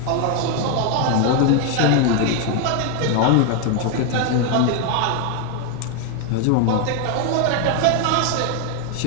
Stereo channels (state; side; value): different; both; correlation 0.01